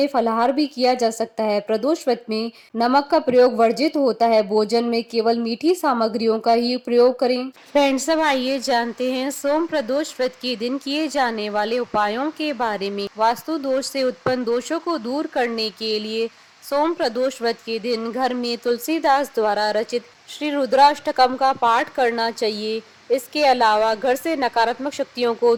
फलाहार भी किया जा सकता है। प्रदोष व्रत में नमक का प्रयोग वर्जित होता है। भोजन में केवल मीठी सामग्रियों का ही प्रयोग करें। फ्रेंड्स, अब आइए जानते हैं सोम प्रदोष व्रत के दिन किए जाने वाले उपायों के बारे में। वास्तु दोष से उत्पन्न दोषों को दूर करने के लिए सोम प्रदोष व्रत के दिन घर में तुलसीदास द्वारा रचित श्री रुद्राष्टकम का पाठ करना चाहिए। इसके अलावा घर से नकारात्मक शक्तियों को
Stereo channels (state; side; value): identical; both; correlation 1.00